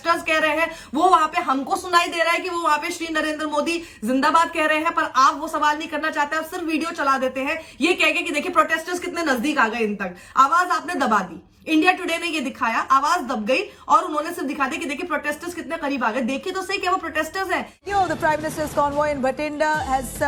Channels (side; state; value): both; identical; correlation 1.00